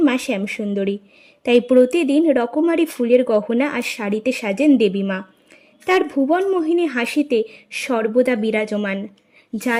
মা শ্যামসুন্দরী, তাই প্রতিদিন রকমারি ফুলের গহনা আর শাড়িতে সাজেন দেবী মা। তার ভুবন মোহিনী হাসিতে সর্বদা বিরাজমান, যা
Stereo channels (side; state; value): both; identical; correlation 1.00